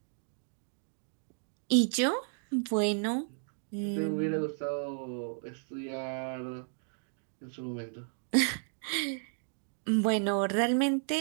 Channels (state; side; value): silent; left; digital silence